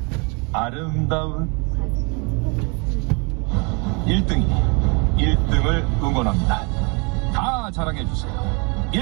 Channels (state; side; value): quieter; left; 31.7 dB